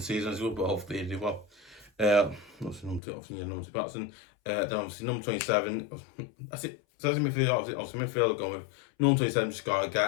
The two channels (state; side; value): drops out; right; at 3.0 s